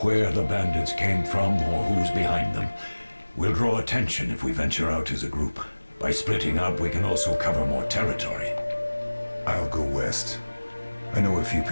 where the bandits came from or who's behind them. We'll draw attention if we venture out as a group. By splitting up, we can also cover more territory. I'll go west. I know a few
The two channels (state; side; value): inverted; both; correlation -1.00